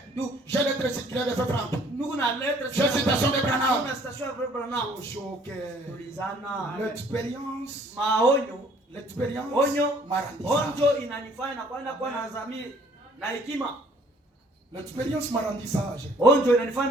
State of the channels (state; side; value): normal; both; correlation 0.58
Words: j'ai l'être circulaire de Franck. J'ai une citation de Branham. L'expérience m'a rendu sage. Quand